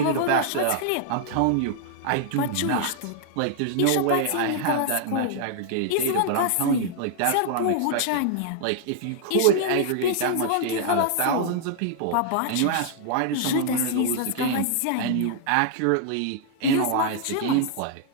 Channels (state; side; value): different; both; correlation -0.01